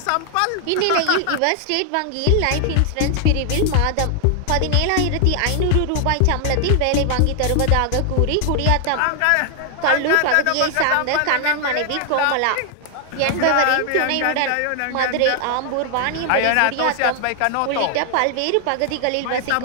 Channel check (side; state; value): both; different; correlation 0.00